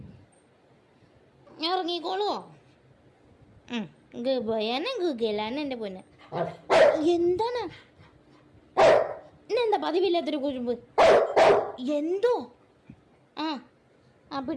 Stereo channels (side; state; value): both; identical; correlation 1.00